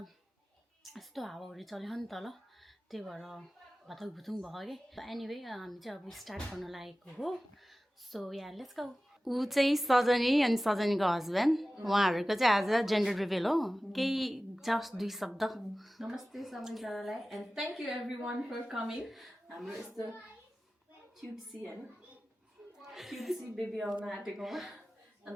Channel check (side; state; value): both; normal; correlation 0.96